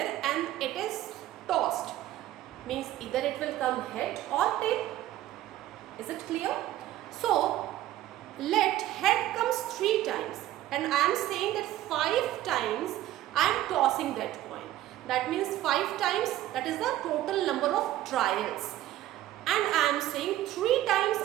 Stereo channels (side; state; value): left; quieter; 14.0 dB